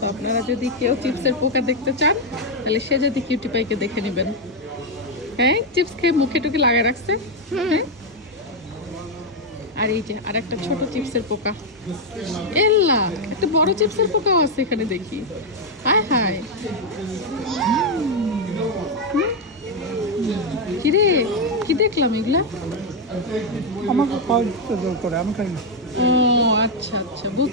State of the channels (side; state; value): both; normal; correlation 0.02